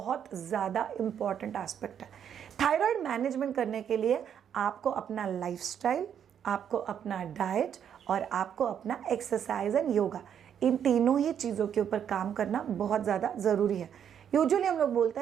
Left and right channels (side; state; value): left; quieter; 8.7 dB